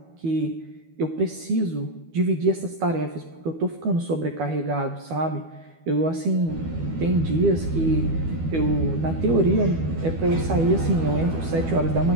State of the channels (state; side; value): late; left; 12 ms